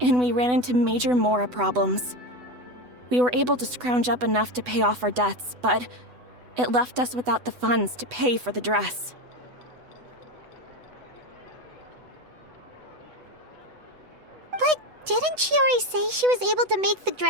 we ran into major mora problems. We were able to scrounge up enough to pay off our debts, but it left us without the funds to pay for the dress. But didn't Chiori say she was able to make the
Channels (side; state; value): left; late; 8.1 ms